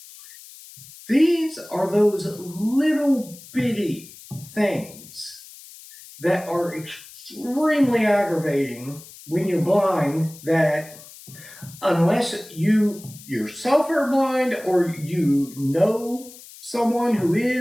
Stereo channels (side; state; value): left; noise; hiss, 19 dB below the sound